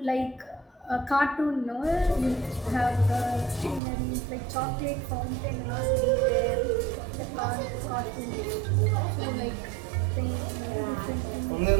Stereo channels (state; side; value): drops out; left; at 3.8 s